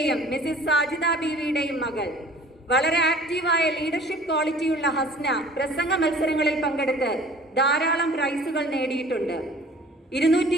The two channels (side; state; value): both; normal; correlation 0.48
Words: മിസിസ് സാജിദ ബീവിയുടെയും മകൾ. വളരെ ആക്റ്റീവായ ലീഡർഷിപ്പ് ക്വാളിറ്റിയുള്ള ഹസ്ന പ്രസംഗ മത്സരങ്ങളിൽ പങ്കെടുത്ത് ധാരാളം പ്രൈസുകൾ നേടിയിട്ടുണ്ട്.